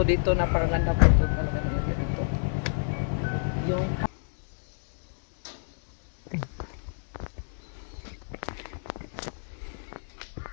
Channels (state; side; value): silent; right; digital silence